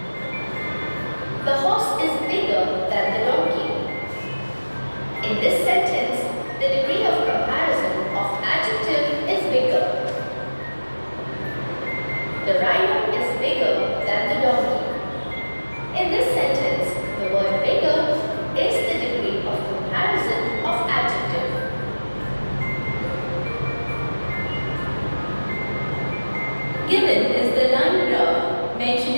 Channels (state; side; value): inverted; both; correlation -1.00